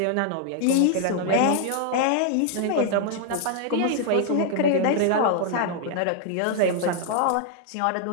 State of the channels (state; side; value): different; both; correlation 0.00